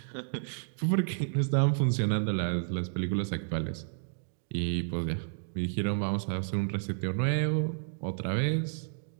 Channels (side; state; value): left; silent; digital silence